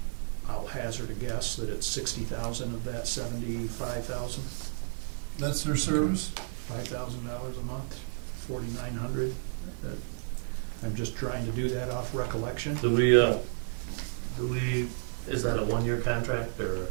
I'll hazard a guess that it's 60,000 of that 75,000. That's their service? $5,000 a month, 4,900. I'm just trying to do that off recollection. Do we, is that a one-year contract or?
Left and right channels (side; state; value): left; silent; digital silence